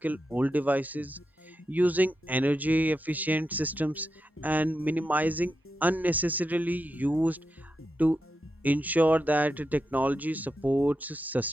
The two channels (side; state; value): both; normal; correlation 0.88